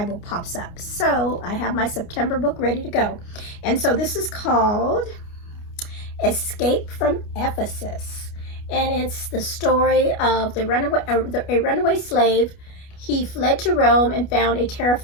pops up. So I have my September book ready to go. And so this is called Escape from Ephesus. And it's the story of a runaway slave. He fled to Rome and found a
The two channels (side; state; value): right; late; 29 ms